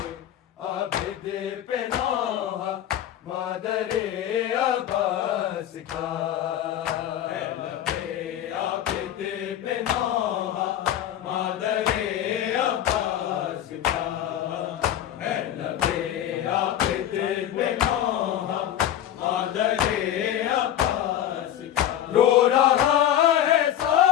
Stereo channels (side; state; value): right; quieter; 11.3 dB